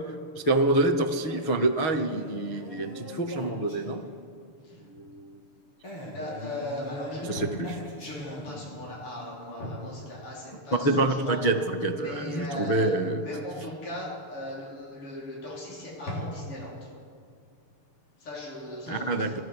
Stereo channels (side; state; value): right; late; 6.8 ms